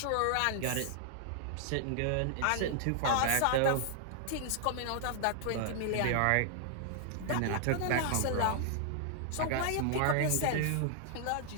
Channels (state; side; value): different; both; correlation -0.01